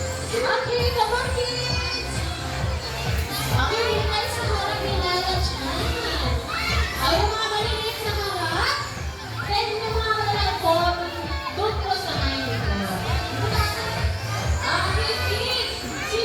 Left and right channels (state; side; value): identical; both; correlation 1.00